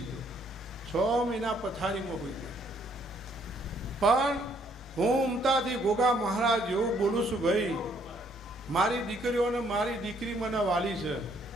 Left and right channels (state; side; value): normal; both; correlation 0.67